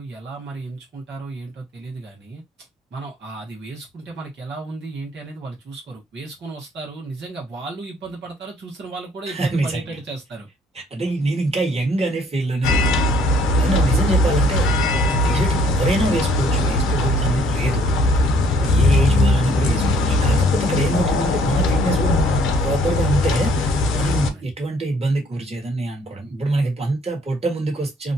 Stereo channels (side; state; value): both; normal; correlation 0.61